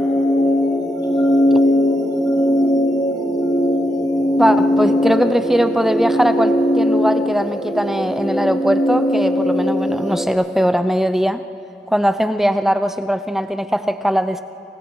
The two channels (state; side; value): normal; both; correlation 0.86